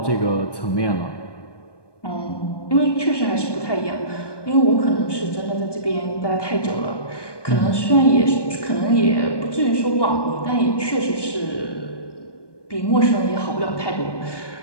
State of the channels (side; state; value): right; late; 1.2 ms